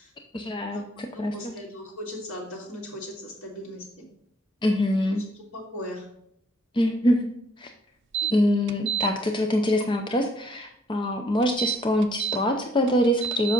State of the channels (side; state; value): both; normal; correlation 0.64